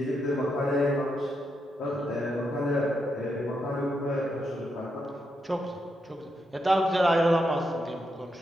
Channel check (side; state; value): both; normal; correlation 0.82